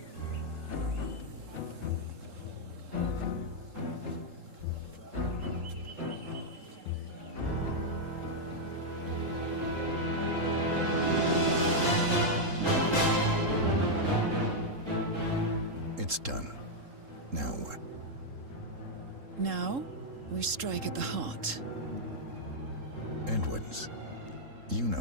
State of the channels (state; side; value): late; left; 3.7 ms